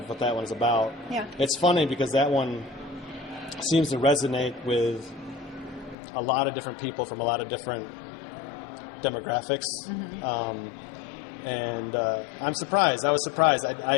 what that one's about. Yeah. It's funny because that one seems to resonate with a lot of different people from a lot of different demographics. And I'm surprised. I was surprised.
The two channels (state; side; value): drops out; right; at 6.0 s